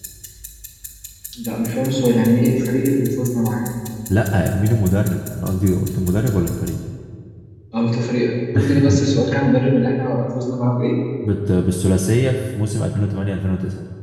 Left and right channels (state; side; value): identical; both; correlation 1.00